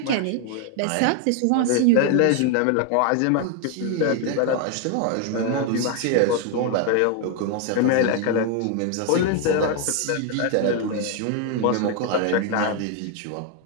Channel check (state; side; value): different; both; correlation 0.01